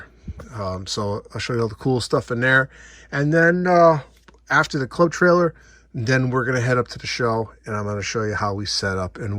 So I'll show you all the cool stuff in there, and then after the club trailer, then we're going to head up to the show, and I'm going to show you how we set up and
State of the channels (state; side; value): identical; both; correlation 1.00